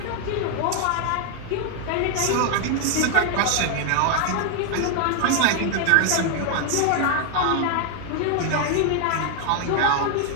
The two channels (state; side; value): different; both; correlation 0.00